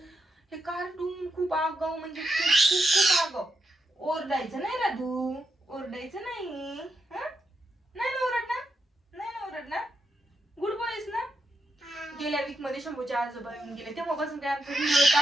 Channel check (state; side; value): normal; both; correlation 0.83